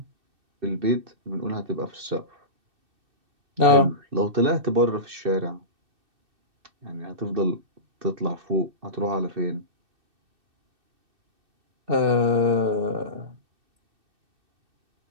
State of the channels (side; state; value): left; late; 2.6 ms